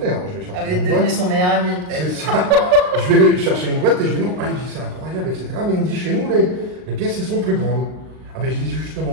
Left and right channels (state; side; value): late; left; 39 ms